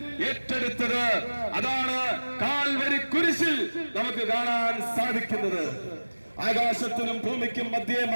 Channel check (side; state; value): both; inverted; correlation -1.00